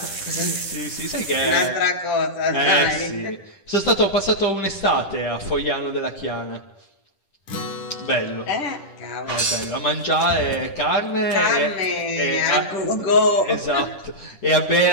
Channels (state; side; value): late; right; 10 ms